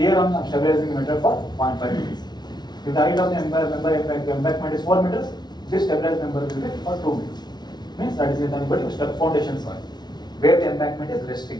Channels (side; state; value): right; late; 0.20 ms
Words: I am stabilizing the meter for 0.5 meters. If the height of the embankment is 4 meters, this stabilized member will be for 2 meters. Means that is nothing but foundation soil, where the embankment is